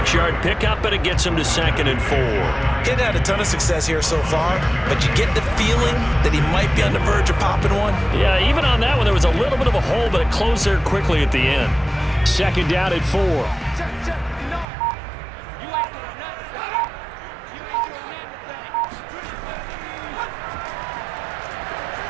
pickup, and it gets him to 2nd and 4. Getting had a ton of success here so far, but you get the feeling that he might be on the verge of popping one. Yeah, even on that one, there was a little bit of a hole, but it closed there quickly at the end. 2nd down at 4.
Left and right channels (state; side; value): drops out; left; at 14.7 s